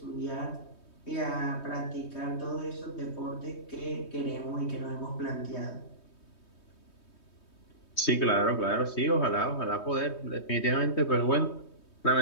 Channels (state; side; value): late; right; 3.2 ms